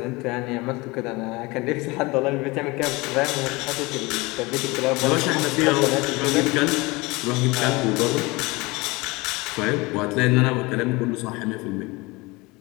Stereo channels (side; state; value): right; quieter; 23.8 dB